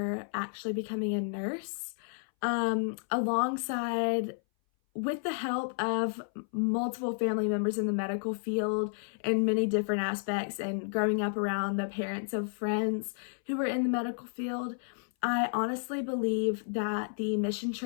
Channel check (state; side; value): silent; right; 57 dB below the other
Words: actually becoming a nurse, alongside with the help of multiple family members in the medical field in many different aspects, and growing up around the parents of friends who were in the medical field, I honestly believe that the mission